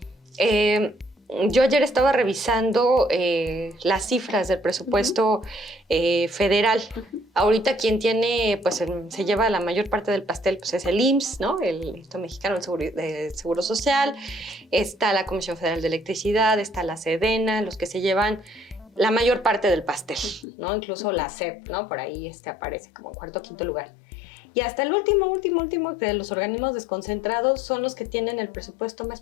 yo ayer estaba revisando las cifras del presupuesto federal. Ahorita quien tiene, pues se lleva la mayor parte del pastel, pues es el IMSS, ¿no? El Instituto Mexicano del Seguro Social. Está la Comisión Federal de Electricidad, está la SEDENA, los que se llevan la mayor parte del pastel, ¿no? Incluso la SEP, ¿no? Por ahí aparece como en 4º o 5º lugar. Y hasta el último de los organismos desconcentrados son los que tienen el presupuesto más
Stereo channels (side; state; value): right; drops out; at 20.5 s